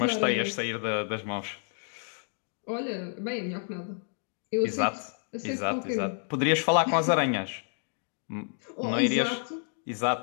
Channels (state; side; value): silent; right; 58 dB below the other